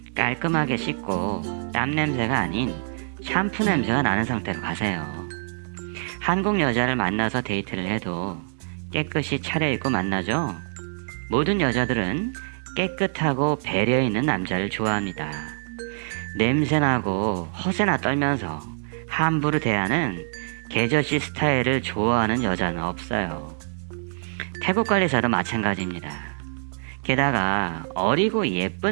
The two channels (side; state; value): left; silent; digital silence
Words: 깔끔하게 씻고 땀 냄새가 아닌 샴푸 냄새가 나는 상태로 가세요. 한국 여자를 만나서 데이트를 해도 깨끗이 차려입고 만나죠. 모든 여자들은 깨끗하고 배려있는 남자를 좋아합니다. 냄새나고 허세나 떨면서 함부로 대하는 개저씨 스타일을 좋아하는 여자는 없어요. 태국 관리사도 마찬가지입니다. 게다가 어리고